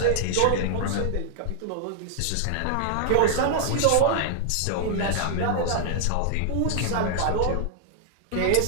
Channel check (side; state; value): both; different; correlation -0.01